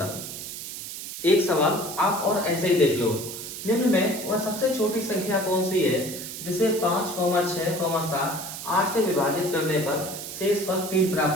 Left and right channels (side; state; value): right; noise; hiss, 9 dB below the sound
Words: एक सवाल आप और ऐसे ही देख लो। निम्न में वह सबसे छोटी संख्या कौन सी है जिसे 5, 6, 7, 8 से विभाजित करने पर शेषफल 3